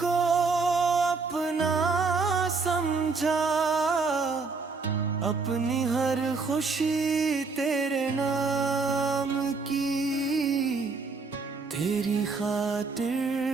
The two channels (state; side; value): quieter; left; 4.3 dB